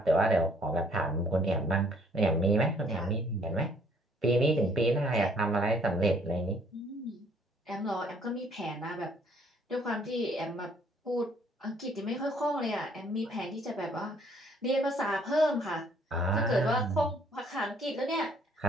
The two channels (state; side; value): normal; both; correlation 0.62